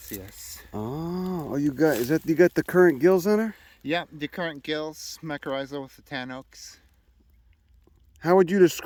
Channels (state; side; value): identical; both; correlation 1.00